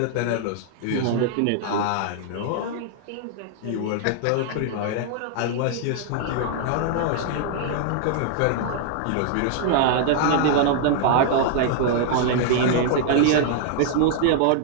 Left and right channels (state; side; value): different; both; correlation -0.01